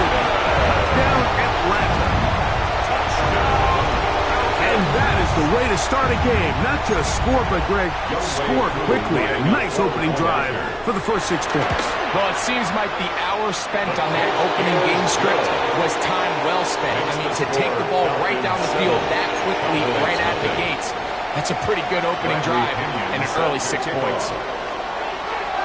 down Atlanta. And that is the way to start a game. Not just score, but Greg, score quickly. A nice opening drive for the first 6 points. Well, it seems like the hour spent on that opening game script was time well spent. I mean, to take the ball right down the field that quickly, right at the gates, that's a pretty good opening drive and an early 6 points.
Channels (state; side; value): identical; both; correlation 1.00